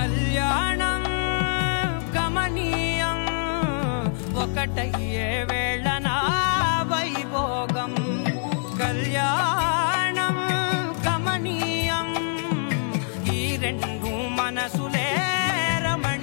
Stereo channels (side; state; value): right; silent; 61 dB below the other